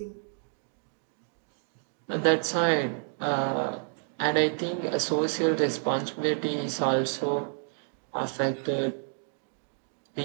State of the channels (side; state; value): left; silent; 58 dB below the other